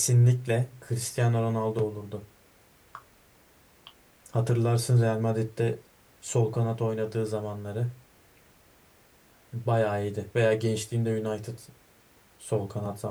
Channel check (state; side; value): identical; both; correlation 1.00